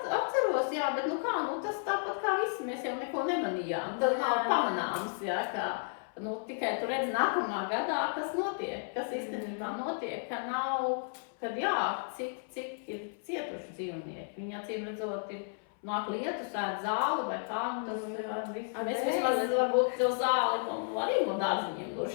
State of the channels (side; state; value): right; silent; 56 dB below the other